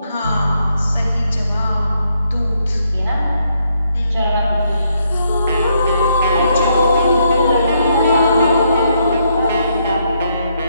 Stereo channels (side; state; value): both; inverted; correlation -0.75